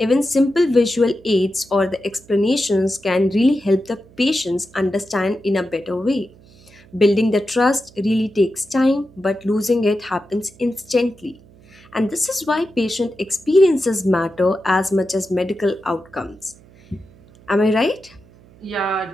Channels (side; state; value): right; noise; hum, 25 dB below the sound